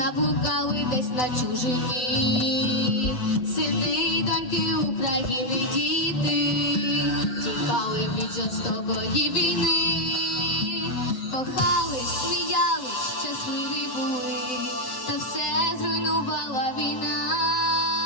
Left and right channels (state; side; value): late; right; 7.9 ms